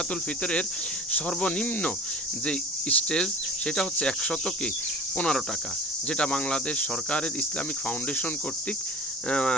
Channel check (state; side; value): normal; both; correlation 0.39